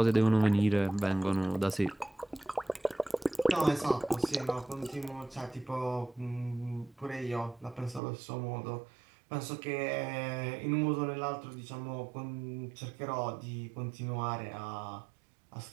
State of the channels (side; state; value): left; drops out; at 8.0 s